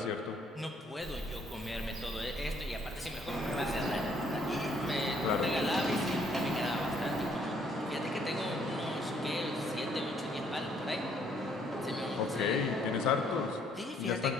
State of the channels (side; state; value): both; normal; correlation 0.66